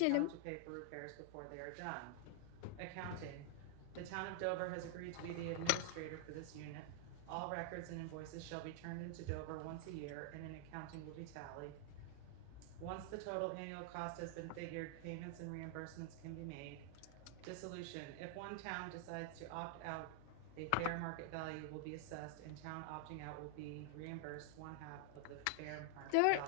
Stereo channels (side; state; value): both; different; correlation 0.00